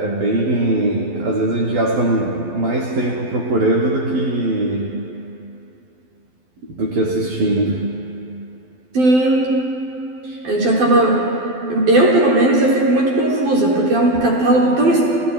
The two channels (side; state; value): left; late; 12 ms